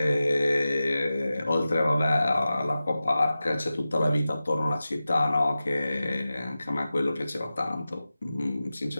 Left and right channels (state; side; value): inverted; both; correlation -0.94